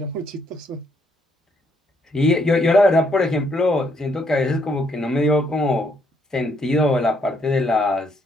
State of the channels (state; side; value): normal; both; correlation 0.71